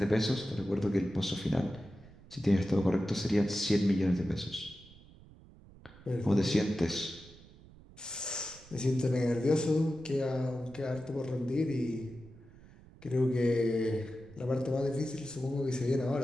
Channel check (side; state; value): right; noise; rumble, 22 dB below the sound